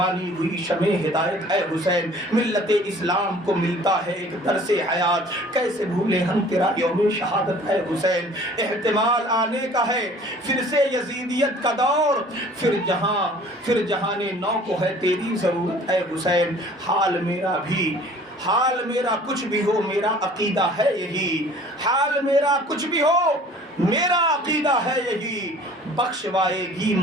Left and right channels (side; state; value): both; normal; correlation 0.50